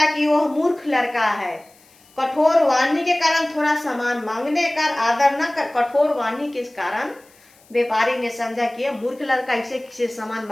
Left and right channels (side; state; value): left; noise; hiss, 29 dB below the sound